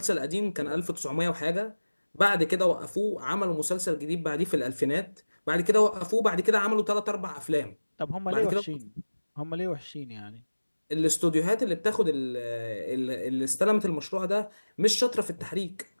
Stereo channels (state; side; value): inverted; both; correlation -1.00